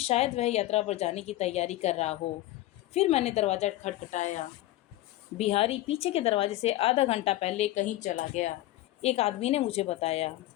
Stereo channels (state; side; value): quieter; right; 16.0 dB